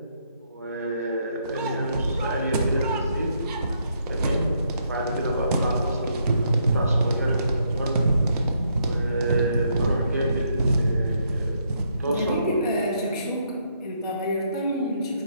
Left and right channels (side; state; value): both; inverted; correlation -0.74